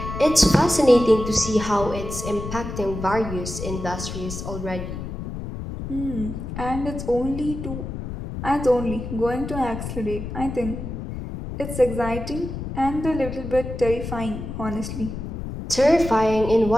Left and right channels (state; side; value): noise; left; rumble, 7 dB below the sound